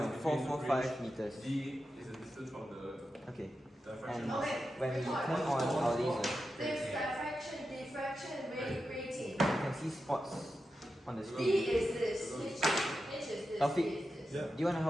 meters. D is the distance from the Okay. And when we turn on our laser, you can see spots on the screen. Taufik, do you want to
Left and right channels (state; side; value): normal; both; correlation 0.90